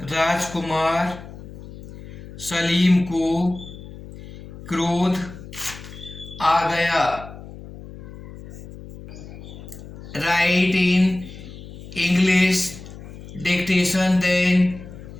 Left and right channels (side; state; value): left; noise; hum, 15 dB below the sound